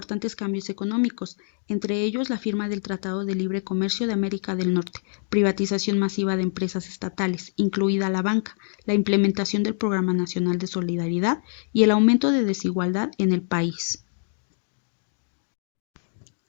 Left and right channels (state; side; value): silent; right; digital silence